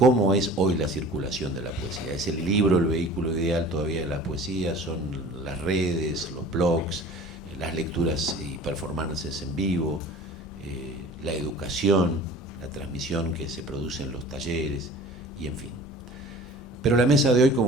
es hoy la circulación de la poesía. ¿Es el libro el vehículo ideal todavía de la poesía? ¿Son las redes, los blogs, las lecturas y performances en vivo, la educación, la transmisión que se produce en los talleres, y en fin? Pero la mesa de hoy,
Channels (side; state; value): both; normal; correlation 0.43